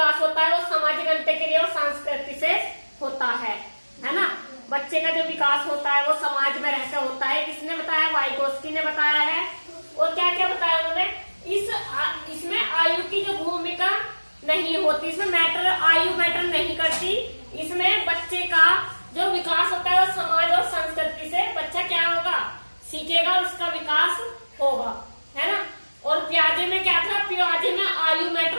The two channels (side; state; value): both; inverted; correlation -1.00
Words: होता है वो सामाजिक अंतःक्रिया और संस्कृति से होता है ना। बच्चे का जो विकास होता है वो समाज में रहकर होता है। किसने बताया? वाइगोत्स्की ने बताया है। और क्या क्या बताया उन्होंने? इसमें आयु की जो भूमिका नहीं होती, इसमें आयु मैटर नहीं करती। इसमें बच्चे का जो विकास होता है वो समाज और संस्कृति से बच्चा क्या होगा? सीखेगा और उसका विकास होगा, है ना। और पियाजे में क्या था? पियाजे में आयु